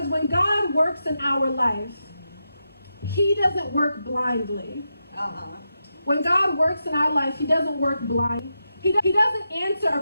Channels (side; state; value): both; inverted; correlation -0.87